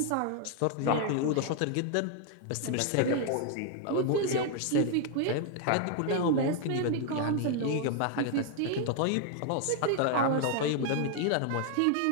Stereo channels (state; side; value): different; both; correlation 0.00